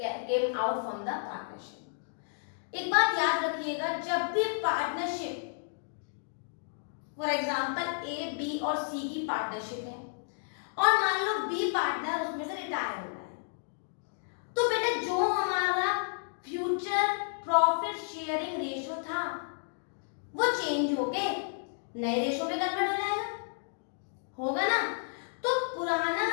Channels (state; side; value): silent; right; digital silence